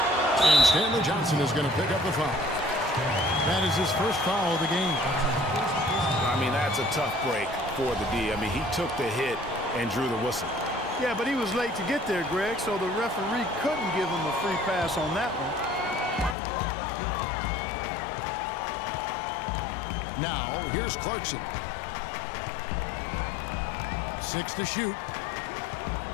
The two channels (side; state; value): right; drops out; at 16.4 s